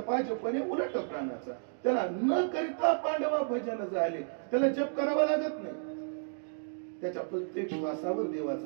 जपणे उलट प्राणाचा. त्याला न करिता पांडवा भजन झाले, त्याला जप करावा लागत नाही. त्याच्या प्रत्येक श्वासावर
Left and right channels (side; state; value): left; silent; digital silence